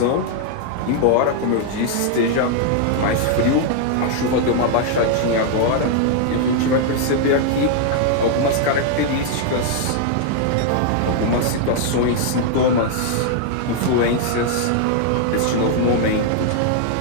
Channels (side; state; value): both; different; correlation 0.00